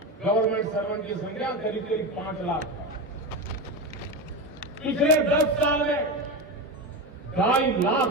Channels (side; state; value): both; normal; correlation 0.19